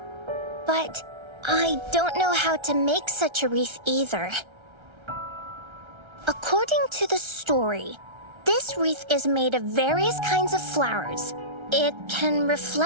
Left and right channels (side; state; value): left; late; 1.3 ms